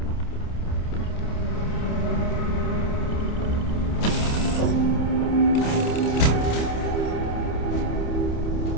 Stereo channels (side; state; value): right; late; 28 ms